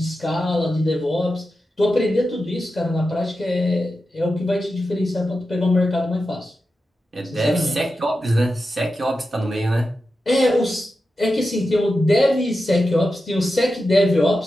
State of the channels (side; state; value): both; normal; correlation 0.91